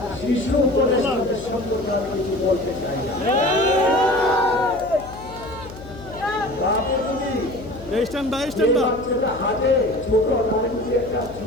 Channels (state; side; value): noise; left; hum, 16 dB below the sound